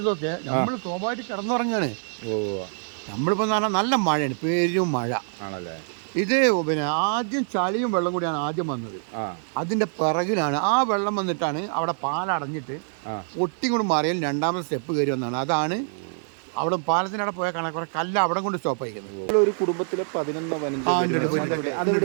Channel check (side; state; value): left; silent; digital silence